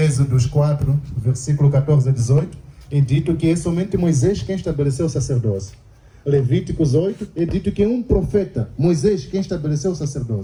4, versículo 14 a 18, é dito que é somente Moisés quem estabeleceu o sacerdócio. Levíticos 8, é dito que é um profeta, Moisés, quem estabeleceu o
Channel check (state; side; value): identical; both; correlation 1.00